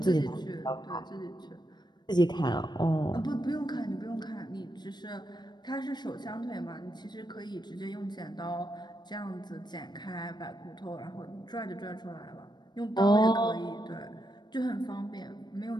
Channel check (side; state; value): right; late; 0.21 ms